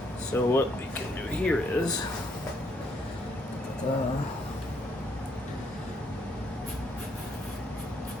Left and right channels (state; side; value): normal; both; correlation 0.71